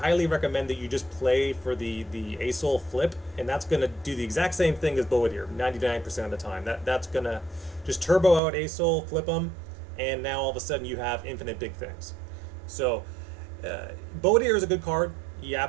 recommend that you just play for the Azir flip, and that's going to do the exact same thing as Boadir 99% of the time. That's going to just turbo out Azir, flip them, and now all of a sudden you have infinite big things. So Boadir is a good card. He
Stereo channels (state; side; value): drops out; left; at 8.4 s